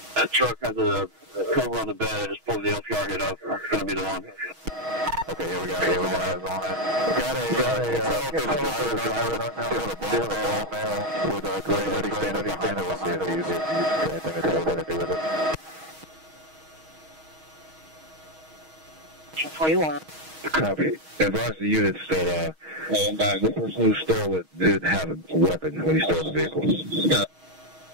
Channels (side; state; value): left; late; 6.3 ms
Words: That truck has a cover on the bed. I just pulled the LPR hit up. It's going to be the one. Okay, here we go. Got a driver with a gray hoodie standing behind us. We'll see if he's anything to do with it. 41. Copy. Advise the units that the person who stole it did have a weapon when he stole the vehicle.